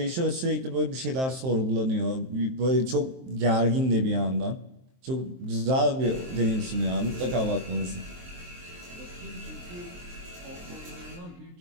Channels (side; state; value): left; late; 23 ms